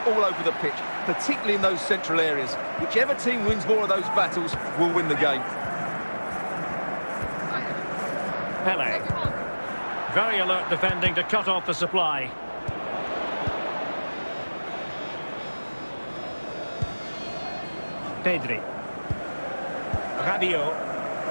all over the pitch, particularly in those central areas. Whichever team wins more of those battles will win the game. Pele. Very alert defending to cut off the supply. Pedri. Rabiot.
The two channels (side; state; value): both; inverted; correlation -1.00